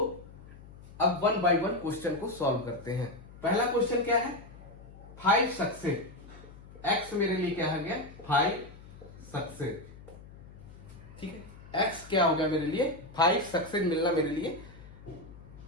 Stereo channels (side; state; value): left; noise; hum, 18 dB below the sound